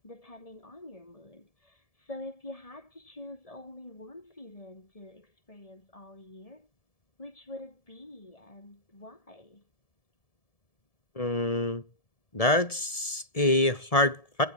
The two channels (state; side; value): late; right; 1.7 ms